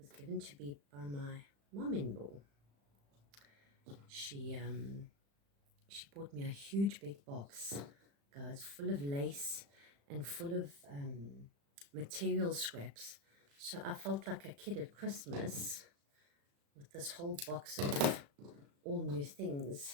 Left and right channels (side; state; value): left; late; 35 ms